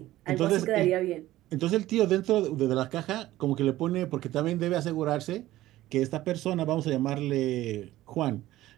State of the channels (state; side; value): quieter; left; 15.6 dB